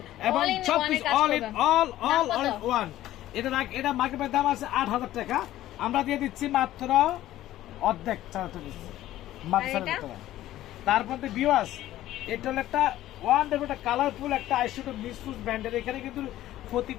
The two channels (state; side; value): quieter; right; 14.2 dB